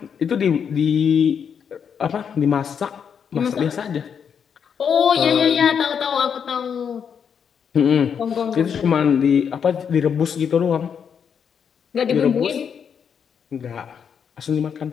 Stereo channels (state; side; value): quieter; right; 7.3 dB